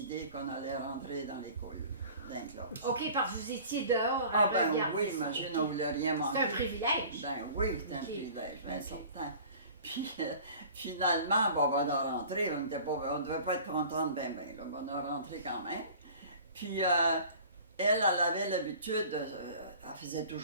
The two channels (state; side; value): inverted; both; correlation -0.45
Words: qu'on allait rentrer dans l'école, dans la classe. OK, parce que vous étiez dehors à Ah ben regarder oui, ça. imagine, on ne voulait rien manquer. C'est un privilège. Ben oui, c'est un OK. privilège, bien OK. certain. Puis finalement, bon, on a rentré, on ne devait pas être contente ben, là, on a rentré quand même. Puis elle avait l'habitude, elle faisait